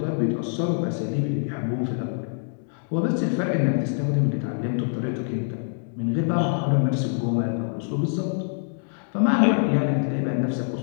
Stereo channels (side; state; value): right; silent; digital silence